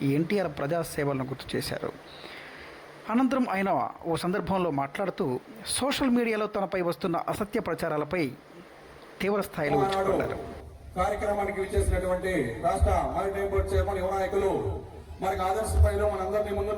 ఎన్టీఆర్ ప్రజాసేవలను గుర్తు చేశారు. అనంతరం ఆయన ఓ సందర్భంలో మాట్లాడుతూ సోషల్ మీడియాలో తనపై వస్తున్న అసత్య ప్రచారాలపై తీవ్ర స్థాయిలో విరుచుకుపడ్డారు. కార్యక్రమానికి విచ్చేసినటువంటి రాష్ట్ర మారిటైమ్ బోర్డు చైర్మన్ యువ నాయకులు, మనకు ఆదర్శ స్థాయిలో మనందరినీ ముందు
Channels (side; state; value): both; identical; correlation 1.00